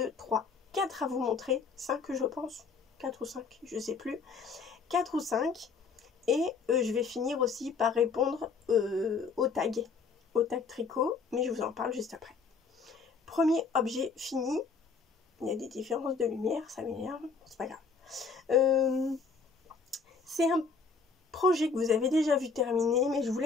3, 4 à vous montrer, 5 je pense, 4 ou 5, je sais plus, 4 ou 5. Et je vais finir aussi par répondre aux tags tricot, mais je vous en parle juste après. Premier objet fini. Il y a des différences de lumière, ça m'énerve, c'est pas grave. C'est un projet que vous avez déjà vu terminer, mais je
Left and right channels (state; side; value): quieter; right; 5.0 dB